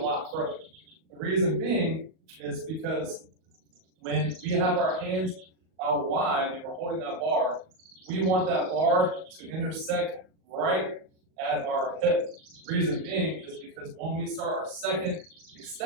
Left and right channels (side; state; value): left; late; 38 ms